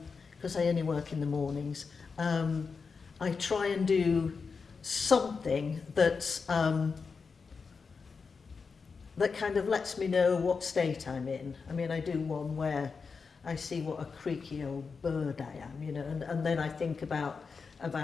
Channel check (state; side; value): quieter; right; 5.1 dB